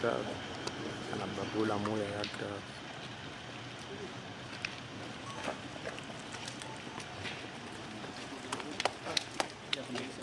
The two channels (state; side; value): identical; both; correlation 1.00